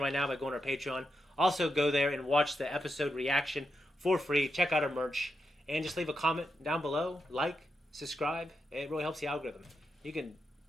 right now by going to our Patreon. Also, go there and watch the episode reaction for free. Check out our merch. And just leave a comment down below. Like, subscribe. It really helps the algorithm. You can,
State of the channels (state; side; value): normal; both; correlation 0.85